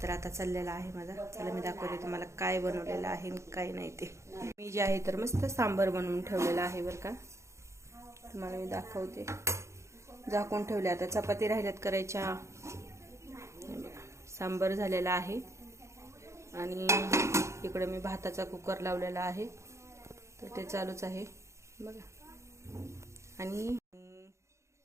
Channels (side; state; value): left; late; 0.14 ms